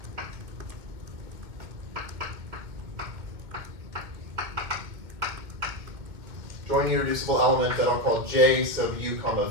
join irreducible element that I'll call J sub U comma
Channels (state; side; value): late; left; 2.2 ms